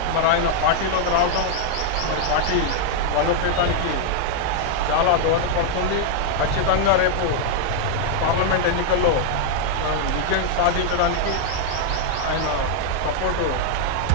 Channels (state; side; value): different; both; correlation 0.00